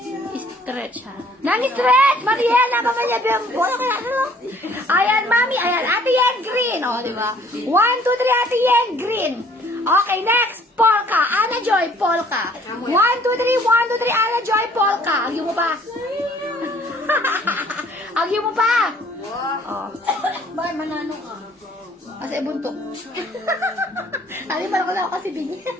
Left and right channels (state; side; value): normal; both; correlation 0.58